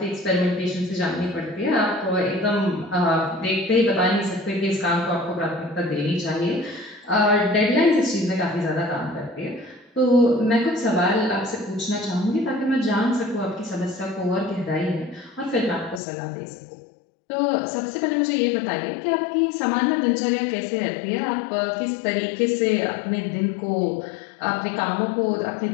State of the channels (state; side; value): drops out; right; at 16.0 s